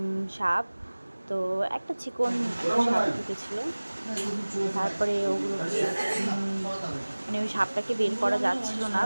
সাপ। তো একটা চিকন সাপ ঢুকেছিল, তারপরে ওগুলো মানে ওই সাপটাকে বের করা যাচ্ছিল না,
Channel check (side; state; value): both; inverted; correlation -1.00